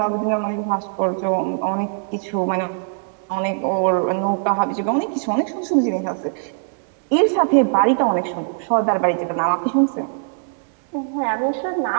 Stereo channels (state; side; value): silent; left; digital silence